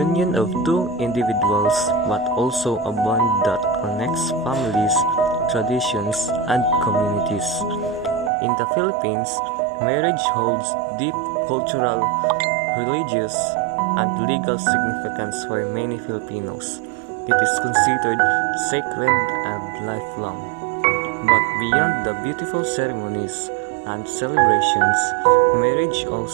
of two individuals but also a bond that connects families, traditions, and communities. In the Philippines, marriage holds deep cultural, religious, and legal significance for many Filipinos. It is considered sacred and lifelong. But beyond the beautiful ceremonies and celebrations, marriage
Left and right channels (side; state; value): left; drops out; at 8.3 s